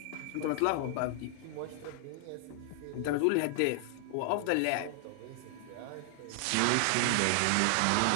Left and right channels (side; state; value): both; different; correlation 0.00